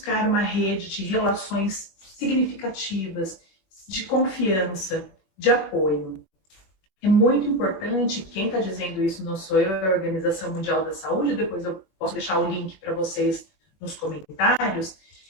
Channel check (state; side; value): late; right; 21 ms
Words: uma rede de relações significativas, de confiança, de apoio. É muito importante, quem está dizendo isso não sou eu, é a Organização Mundial da Saúde, depois eu posso deixar o link para vocês nos comentários,